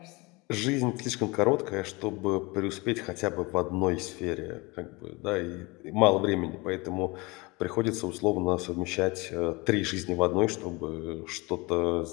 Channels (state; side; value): quieter; right; 25.0 dB